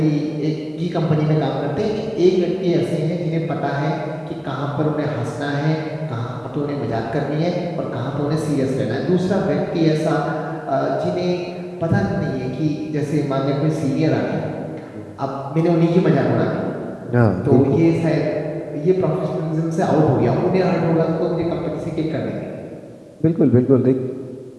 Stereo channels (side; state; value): both; identical; correlation 1.00